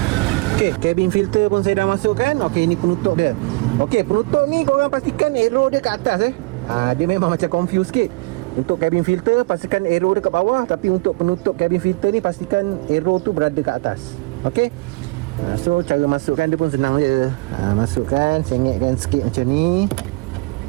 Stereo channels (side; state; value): left; quieter; 25.5 dB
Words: Ok, cabin filter pun saya dah masukkan. Ok, ni penutup dia. Ok, penutup ni korang pastikan arrow dia ke atas dia memang macam confused sikit. Untuk cabin filter pastikan arrow dia kat bawah, tapi untuk penutup cabin filter ni pastikan arrow tu berada kat atas. Ok, so cara masukkan dia pun senang je. Masukkan, sengitkan sikit macam ni.